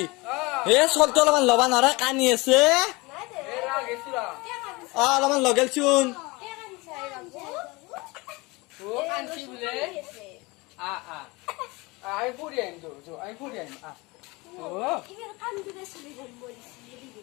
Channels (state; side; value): quieter; right; 24.5 dB